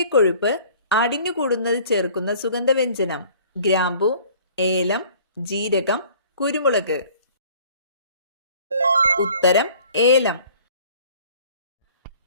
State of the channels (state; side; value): inverted; both; correlation -0.52